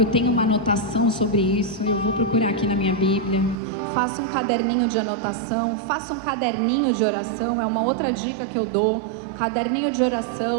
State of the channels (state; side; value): drops out; left; at 3.6 s